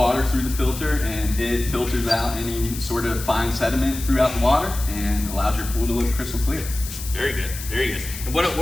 through the filter, and it filters out any sort of fine sediment throughout the water and allows your pool to look crystal clear. Very good, very good. And what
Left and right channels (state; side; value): noise; left; hiss, 10 dB below the sound